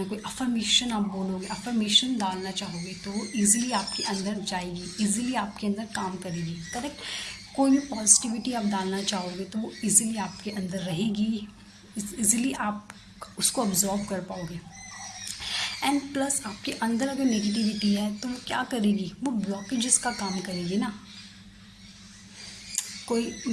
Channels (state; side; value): identical; both; correlation 1.00